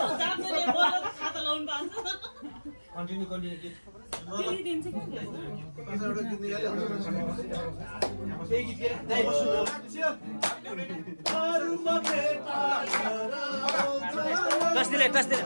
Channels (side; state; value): both; inverted; correlation -1.00